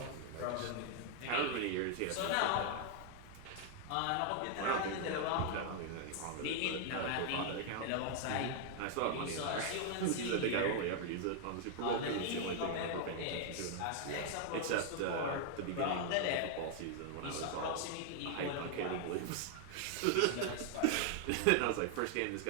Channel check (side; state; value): both; different; correlation 0.00